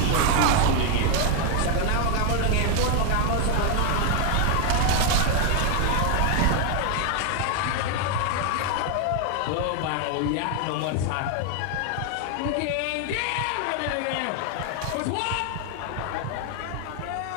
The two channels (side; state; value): both; different; correlation 0.00